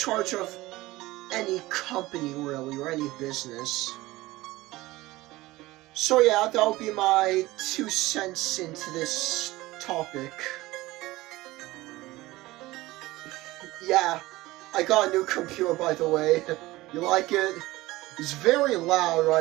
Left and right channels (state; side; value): quieter; left; 18.8 dB